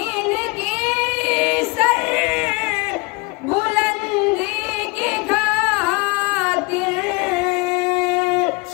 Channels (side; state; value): right; quieter; 26.9 dB